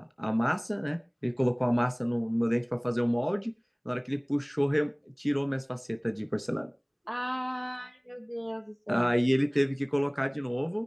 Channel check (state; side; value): identical; both; correlation 1.00